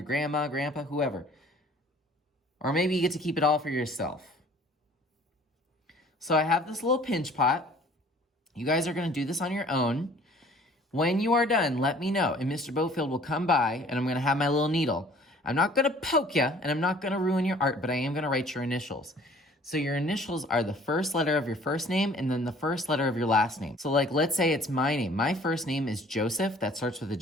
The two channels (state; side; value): normal; both; correlation 0.53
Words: grandma, grandpa, whoever. Or maybe you get to keep it all for yourself. So I have this little pinch pot. You guys are going to do this on your own. When you are done, let me know, and Mr. Bofield will come by, and I'm going to have my little needle. I'm not going to poke you, and I'm not going to ruin your art, but I am going to write your initials. So your initials are the first letter of your first name and then the first letter of your last name. So like, let's say it's my name. My first name is Joseph, that starts with a